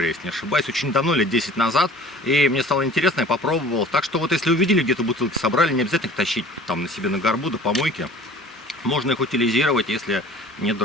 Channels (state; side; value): normal; both; correlation 0.47